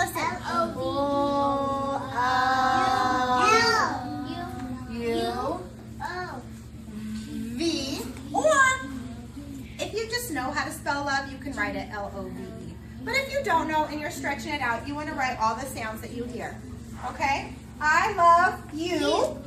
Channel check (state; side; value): identical; both; correlation 1.00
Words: U V. Or if you just know how to spell love, you can write it L-O-V-E. But if you don't know and you're stretching it out, you want to write all the sounds that you hear. Okay? I love you.